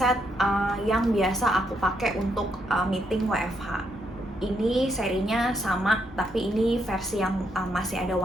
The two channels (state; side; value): normal; both; correlation 0.77